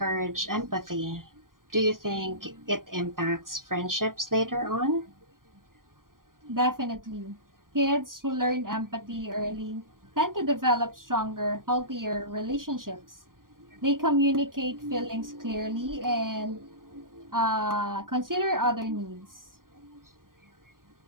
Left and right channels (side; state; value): left; late; 0.91 ms